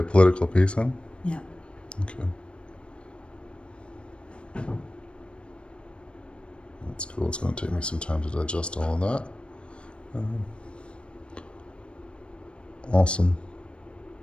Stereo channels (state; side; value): late; right; 0.057 ms